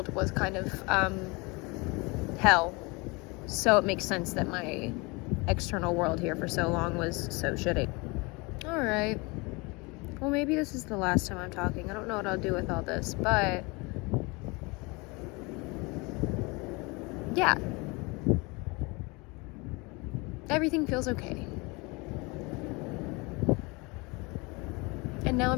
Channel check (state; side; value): quieter; right; 26.9 dB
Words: was kind of hell, so it makes sense that my external world here for so long was so shitty. Alright, well, maybe this is the last time I'm talking. I don't know what I'll do with all this, but yeah, everything feels okay. And now